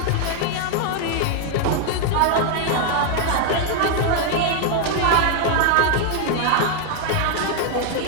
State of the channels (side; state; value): both; different; correlation 0.00